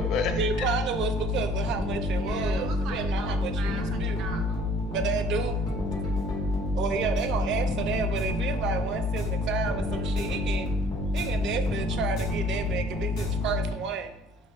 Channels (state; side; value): normal; both; correlation 0.54